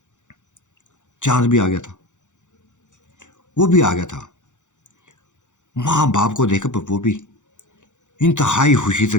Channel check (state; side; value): late; right; 0.85 ms